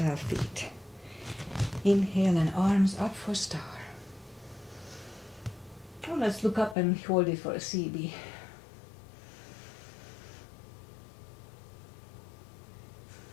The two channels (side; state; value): right; drops out; at 6.8 s